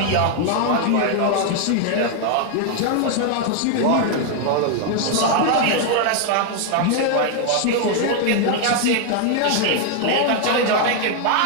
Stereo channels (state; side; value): different; both; correlation 0.00